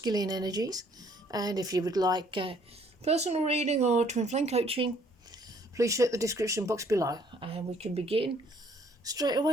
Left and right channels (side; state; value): both; normal; correlation 0.62